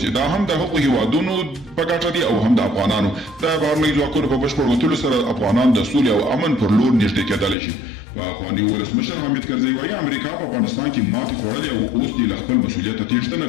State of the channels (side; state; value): right; drops out; at 7.6 s